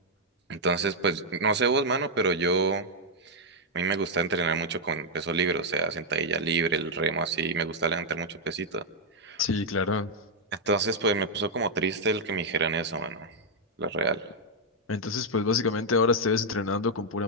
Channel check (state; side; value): normal; both; correlation -0.02